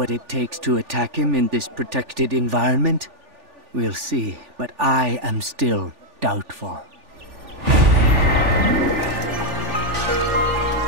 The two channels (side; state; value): left; late; 3.4 ms